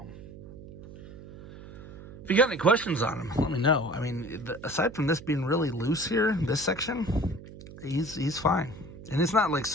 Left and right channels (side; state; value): right; noise; hum, 15 dB below the sound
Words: If you got any questions on him, let me know. I mean, aside from this being really loose here, this section, he's fine. And it's not like